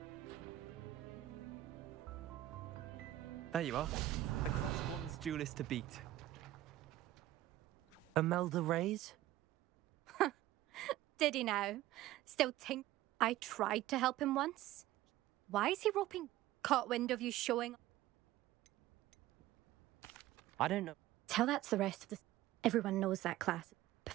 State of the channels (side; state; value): left; quieter; 15.0 dB